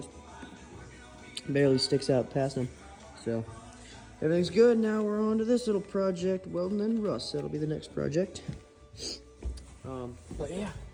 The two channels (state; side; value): identical; both; correlation 1.00